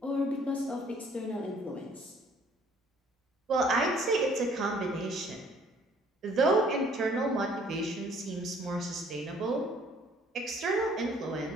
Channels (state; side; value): normal; both; correlation 0.58